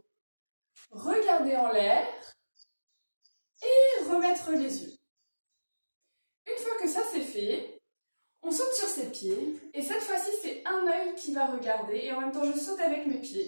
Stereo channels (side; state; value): both; inverted; correlation -1.00